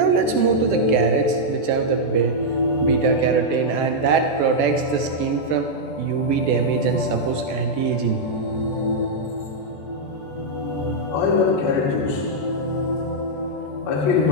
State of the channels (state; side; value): late; right; 14 ms